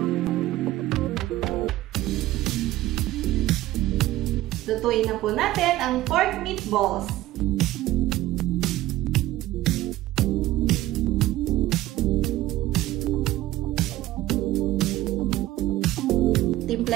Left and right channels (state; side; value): quieter; left; 15.9 dB